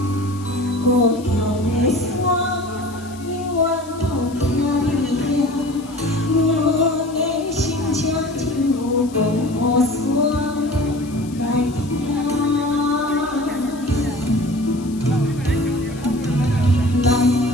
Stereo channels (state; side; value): noise; left; hiss, 21 dB below the sound